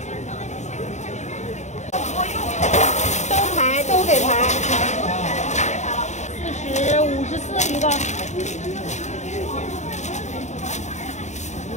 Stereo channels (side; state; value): right; late; 0.34 ms